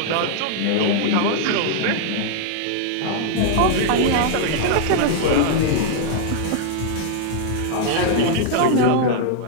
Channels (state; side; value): different; both; correlation 0.00